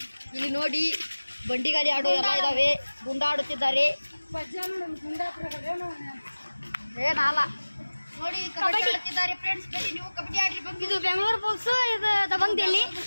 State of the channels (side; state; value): both; inverted; correlation -1.00